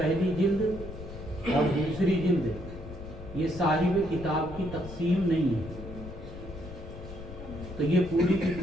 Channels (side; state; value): left; noise; rumble, 12 dB below the sound